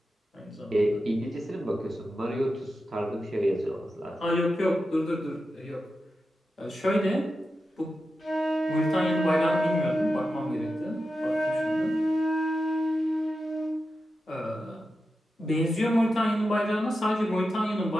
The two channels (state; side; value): normal; both; correlation 0.90